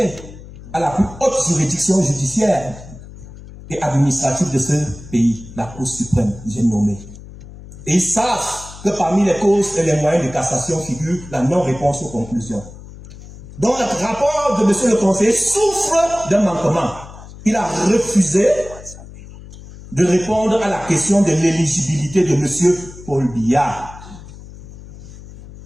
à la plus haute juridiction judiciaire et administrative de ce pays, la Cour suprême, j'ai nommé. Et ils savent que parmi les causes et les moyens de cassation figure la non-réponse aux conclusions. Donc le rapport de monsieur le conseiller souffre d'un manquement. Il a refusé de répondre à la question de l'éligibilité de monsieur Paul Biya.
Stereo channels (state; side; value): noise; left; hum, 16 dB below the sound